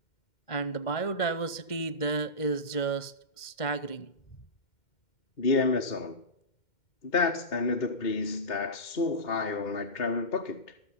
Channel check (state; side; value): late; right; 2.1 ms